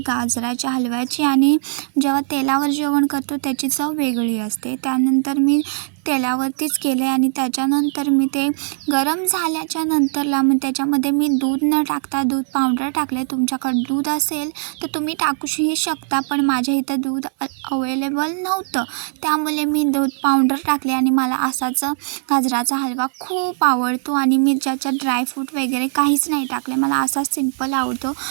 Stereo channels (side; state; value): left; silent; digital silence